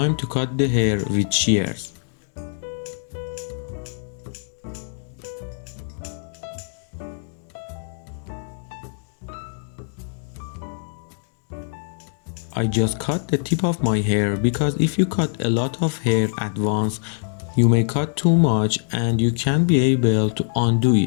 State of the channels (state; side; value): silent; right; digital silence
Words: to cut the hair with shears. I just cut the tip of my hair because if you cut a lot of hair at once, you may cut too much and you can't be able to undo